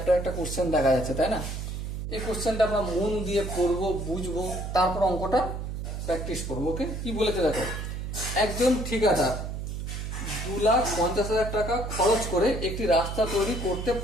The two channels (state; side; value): noise; right; hum, 5 dB below the sound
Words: একটা কোশ্চেন দেখা যাচ্ছে, তাই না? এই কোশ্চেনটা আমরা মন দিয়ে পড়বো, বুঝবো, তারপর অঙ্কটা প্র্যাকটিস করবো। ওকে, কি বলেছে দেখো। একজন ঠিকাদার 2,50,000 টাকা খরচ করে একটি রাস্তা তৈরি করতে